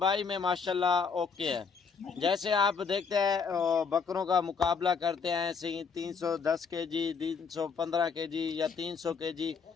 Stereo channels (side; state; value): right; quieter; 5.5 dB